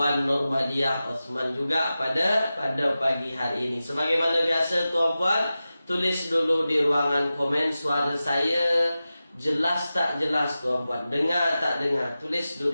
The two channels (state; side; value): inverted; both; correlation -0.94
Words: Nurmadiah Osman juga pada pagi hari ini. Sebagaimana biasa tuan-puan, tulis dulu di ruangan komen suara saya jelas tak jelas tuan-puan, dengar tak dengar, tulis